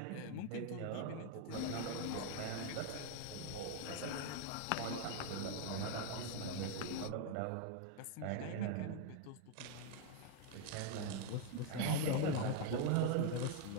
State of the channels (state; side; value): different; both; correlation 0.00